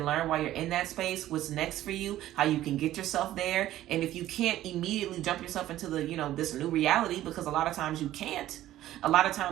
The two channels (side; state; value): left; quieter; 13.8 dB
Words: learn while you're in that space, what's next for you, how you can get yourself there. And if you can't immediately jump yourself into the, you know, this new reality, because a lot of times you can't. A lot of